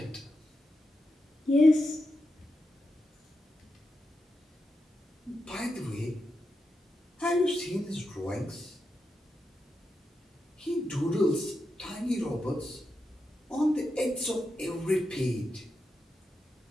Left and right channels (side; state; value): both; normal; correlation 0.87